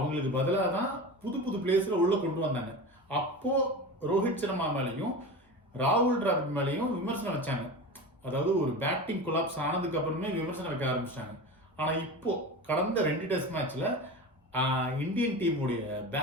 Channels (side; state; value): both; normal; correlation 0.29